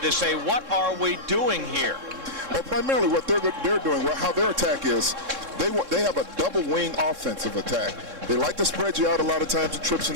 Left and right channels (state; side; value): late; left; 3.7 ms